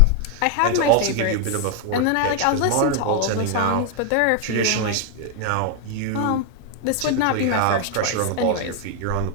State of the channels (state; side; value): different; both; correlation 0.00